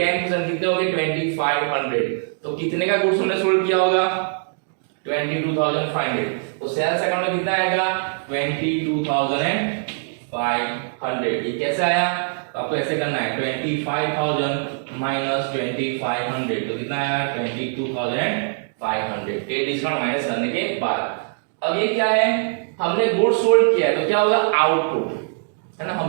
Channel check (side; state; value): left; silent; digital silence